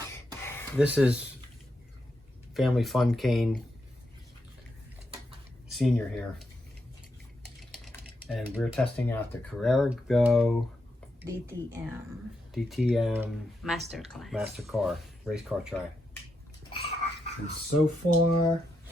This is Family Fun Cane Senior here. And we're testing out the Carrera Go DTM Masterclass. Master Car, race car track. And so far,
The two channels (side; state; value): both; normal; correlation 0.84